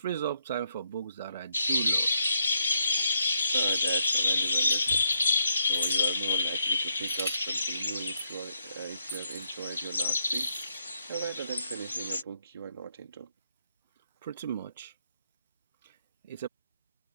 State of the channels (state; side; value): inverted; both; correlation -0.75